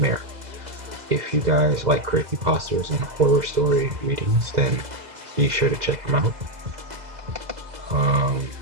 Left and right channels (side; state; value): left; late; 2.0 ms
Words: If you guys like creepypastas and horror story readings, then be sure to check him out.